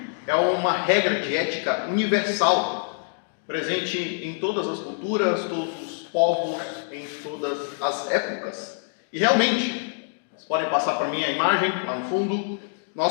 é uma regra de ética universal, presente em todas as culturas, todos os povos, em todas as épocas. E realmente, vocês podem passar para mim a imagem, lá no fundo,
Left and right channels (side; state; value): right; silent; digital silence